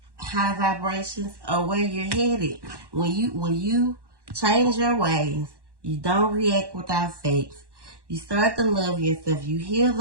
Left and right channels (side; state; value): left; late; 1.1 ms